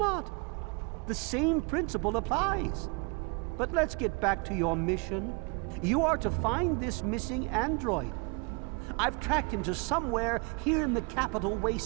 The same principle applies. But let's get back to your mission. You are to find this missing android. I've tracked him to somewhere here in the capital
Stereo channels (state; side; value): quieter; left; 32.6 dB